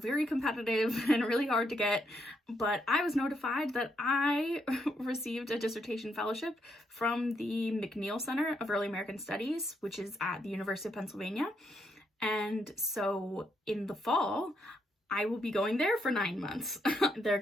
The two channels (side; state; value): both; normal; correlation 0.77